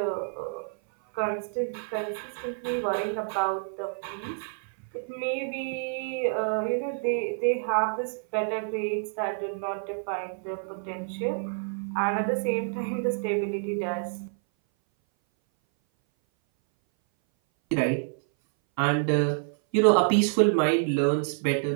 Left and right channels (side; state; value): left; silent; 58 dB below the other